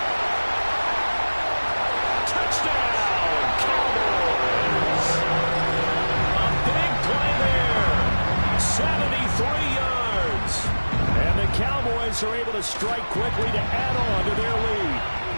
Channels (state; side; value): inverted; both; correlation -1.00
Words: Touchdown, Cowboys. A big play there. 73 yards. And the Cowboys are able to strike quickly to add on to their lead.